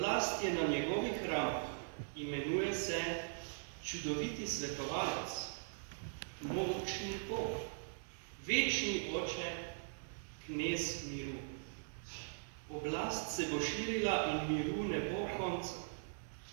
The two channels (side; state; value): left; silent; digital silence